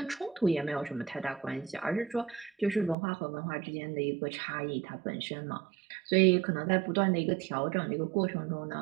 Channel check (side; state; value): left; drops out; at 3.0 s